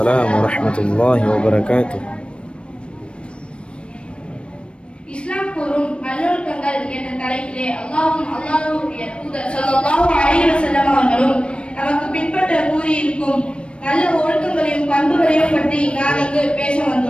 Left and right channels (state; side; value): late; right; 0.058 ms